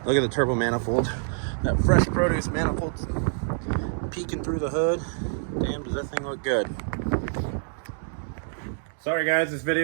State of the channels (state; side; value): silent; left; digital silence